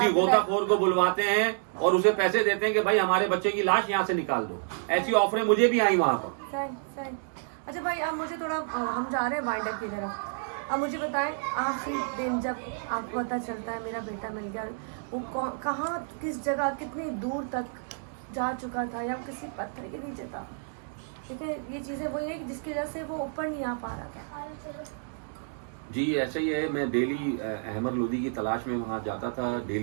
गोताखोर को बुलवाते हैं और उसे पैसे देते हैं कि भाई हमारे बच्चे की लाश यहाँ से निकाल दो। ऐसी ऑफरें मुझे भी आई वहां पर। अच्छा भाई, अब मुझे थोड़ा, हम जा रहे हैं वाइंड अप की तरफ। अब मुझे बताएं, आखिरी दिन जब आपको पता चलता है मेरा बेटा मिल गया, वो कहाँ, किस जगह, कितनी दूर तक जा चुका था, या किसी पत्थर के नीचे था? ठीक है, ये चीज़ें वही है जिसकी वजह से वो ऊपर नहीं आ पा रहा था। जी ऐसा ही है, मैं डेली अहमर लोधी की तलाश में वहाँ जाता था,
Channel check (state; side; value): silent; left; digital silence